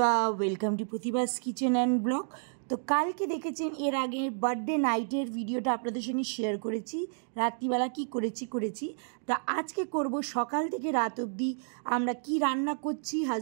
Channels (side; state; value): left; silent; digital silence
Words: welcome to Pratibha's kitchen and blog. তো কালকে দেখেছেন এর আগে বার্থডে নাইটের ভিডিওটা আপনাদের সঙ্গে শেয়ার করেছি, রাত্রিবেলা কি করেছি। তা আজকে করব সকাল থেকে রাত অবধি আমরা কি রান্না করছি,